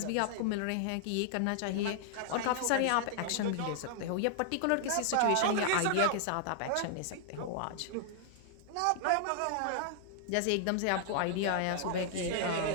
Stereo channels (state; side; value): different; both; correlation -0.01